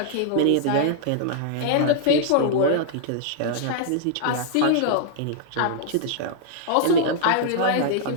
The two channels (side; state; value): both; different; correlation -0.01